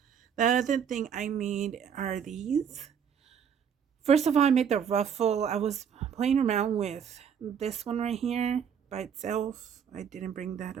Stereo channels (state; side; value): quieter; left; 7.7 dB